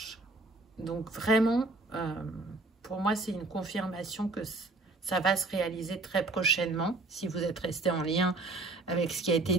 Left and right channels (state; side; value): quieter; left; 3.2 dB